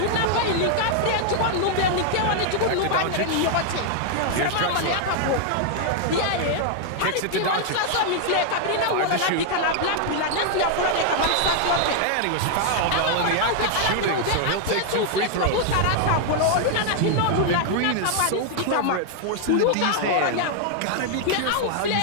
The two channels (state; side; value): different; both; correlation 0.00